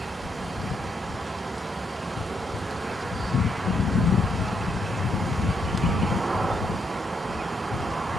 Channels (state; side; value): normal; both; correlation 0.77